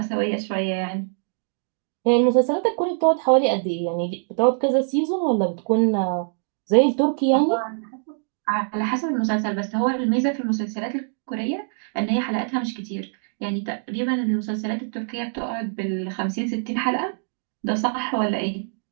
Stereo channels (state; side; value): silent; left; digital silence